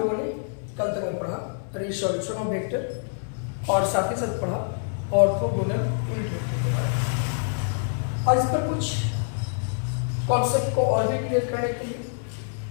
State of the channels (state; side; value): silent; right; 61 dB below the other